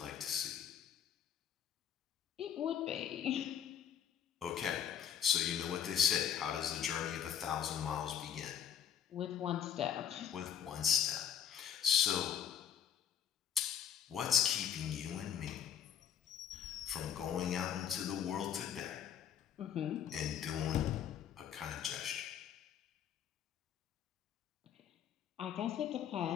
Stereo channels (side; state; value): right; quieter; 9.0 dB